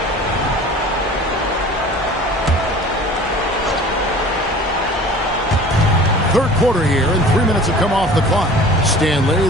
Third quarter here, and 3 minutes have come off the clock. Stanley,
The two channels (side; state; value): both; normal; correlation 0.43